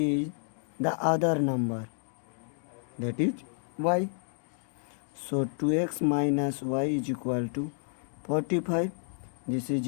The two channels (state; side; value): silent; right; digital silence